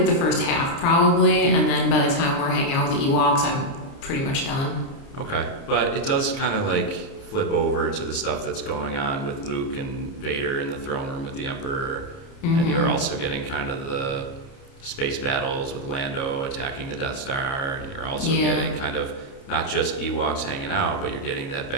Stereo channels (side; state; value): right; late; 29 ms